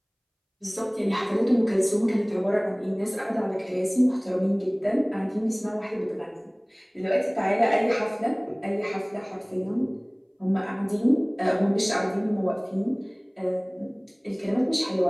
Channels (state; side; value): identical; both; correlation 1.00